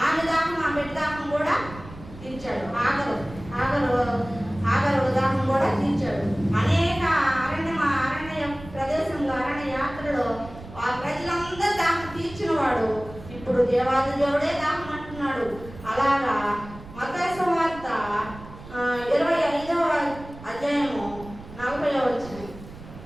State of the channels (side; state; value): right; noise; rumble, 16 dB below the sound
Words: ఆమె దాహం ఆ బిడ్డ దాహం కూడా తీర్చాడు. ఆగరు దాహం కూడా తీర్చాడు. అనేక అరణ్య ప్రదేశంలో అరణ్య యాత్రలో ఆ ప్రజలందరూ దాహం తీర్చిన వాడు ఇప్పుడు దేవాది దేవుడే దాహం అంటున్నాడు. అలాగా మత్తయి సువార్త 25:40